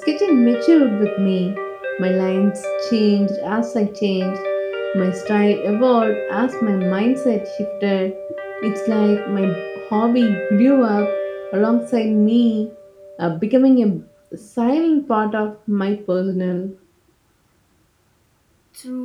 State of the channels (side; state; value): both; identical; correlation 1.00